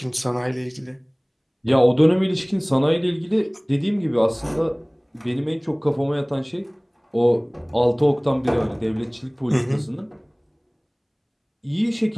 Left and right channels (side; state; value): both; identical; correlation 1.00